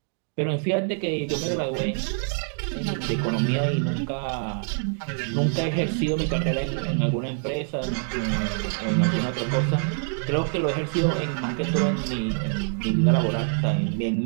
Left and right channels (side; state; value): left; silent; 55 dB below the other